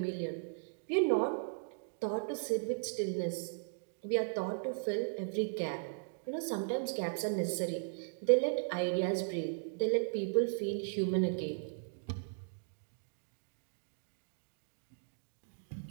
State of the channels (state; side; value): silent; left; digital silence